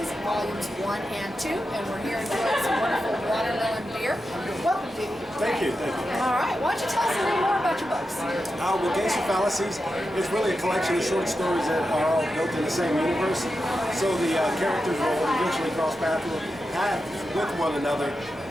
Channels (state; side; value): normal; both; correlation 0.89